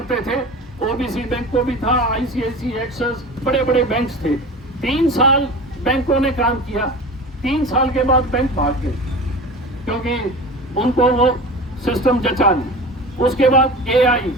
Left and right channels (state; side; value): normal; both; correlation 0.34